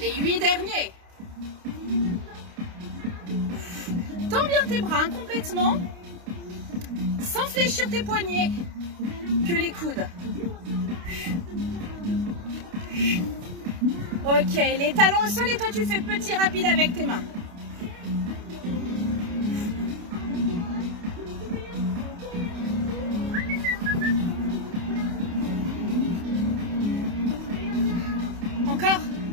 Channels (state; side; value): late; left; 29 ms